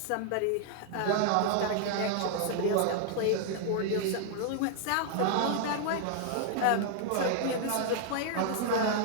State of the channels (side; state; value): both; different; correlation 0.00